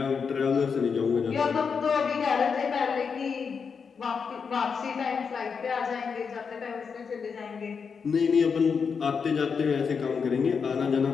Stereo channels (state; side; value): quieter; right; 5.9 dB